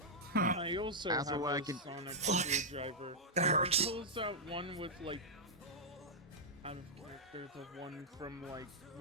I also That's have what I a can- sonic screwdriver. It pulls out one with like out of character, the one from like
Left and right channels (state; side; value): normal; both; correlation -0.07